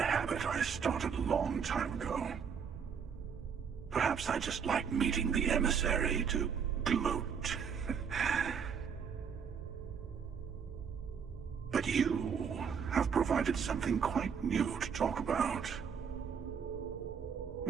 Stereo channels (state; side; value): quieter; left; 6.8 dB